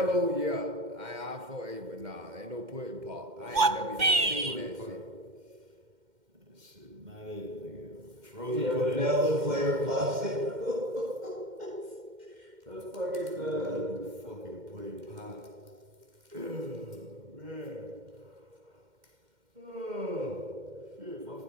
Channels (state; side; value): late; left; 2.1 ms